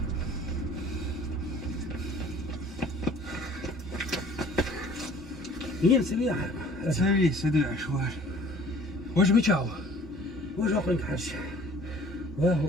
مين سويها؟ سوي سدع شوار واش بيتشاو واش اخرين حاج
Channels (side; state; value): both; normal; correlation 0.51